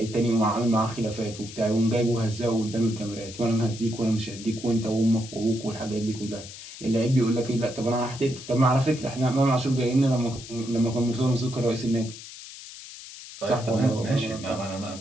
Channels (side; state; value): left; noise; hiss, 14 dB below the sound